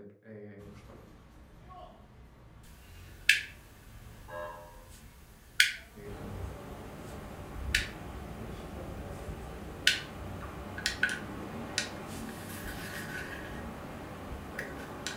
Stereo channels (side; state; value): both; identical; correlation 1.00